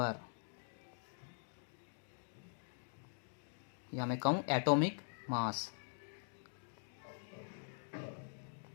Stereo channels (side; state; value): right; silent; digital silence